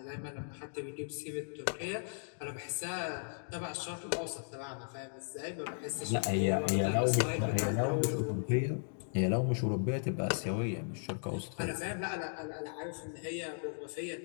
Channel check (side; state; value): right; silent; digital silence